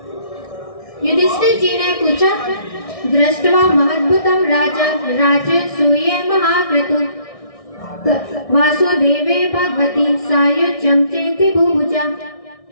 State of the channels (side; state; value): right; late; 1.6 ms